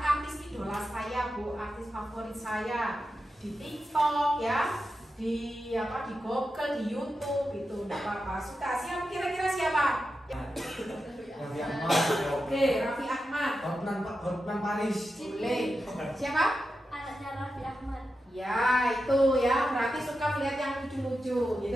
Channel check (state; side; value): normal; both; correlation 0.90